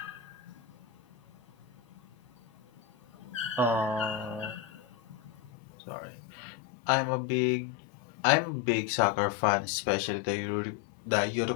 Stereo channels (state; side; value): drops out; right; at 5.5 s